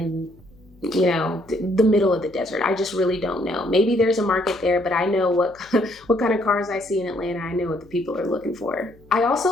you know, the middle of the desert. I just really don't know. Maybe there's a market there, but I know what kind of cars I see in Atlanta. I know what the people are looking for. I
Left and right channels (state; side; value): noise; left; hum, 27 dB below the sound